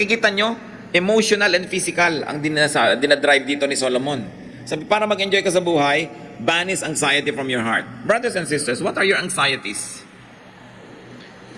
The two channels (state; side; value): identical; both; correlation 1.00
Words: nyo, emotional and physical ang dinadrive dito ni Solomon. Sabi, para mag-enjoy ka sa buhay, banish anxiety from your heart. Brothers and sisters, what are your anxieties?